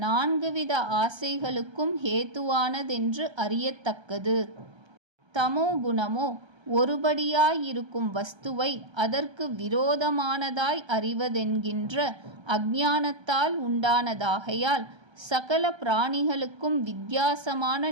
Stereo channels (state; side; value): late; left; 1.3 ms